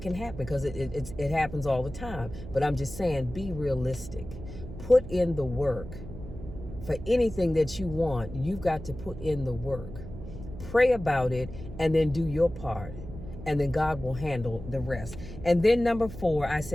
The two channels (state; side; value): noise; right; hum, 12 dB below the sound